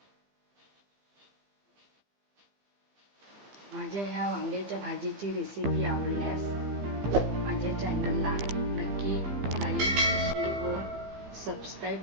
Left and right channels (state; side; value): late; left; 15 ms